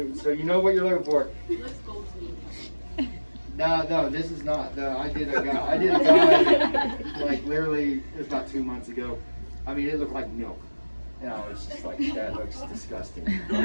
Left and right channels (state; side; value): inverted; both; correlation -1.00